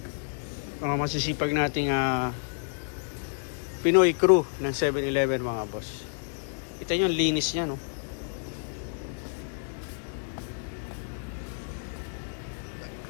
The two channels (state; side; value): silent; right; digital silence